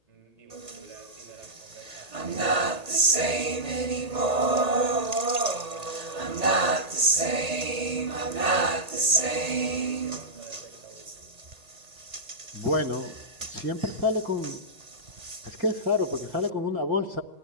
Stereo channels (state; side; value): late; left; 1.8 ms